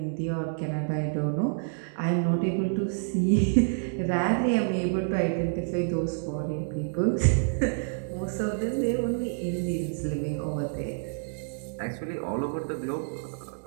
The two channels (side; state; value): left; silent; digital silence